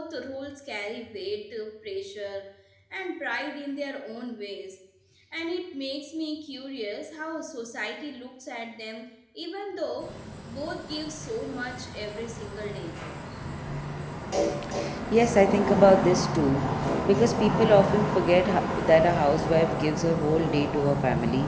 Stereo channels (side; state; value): both; identical; correlation 1.00